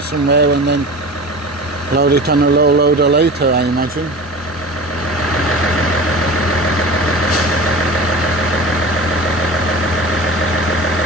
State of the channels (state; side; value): normal; both; correlation 0.34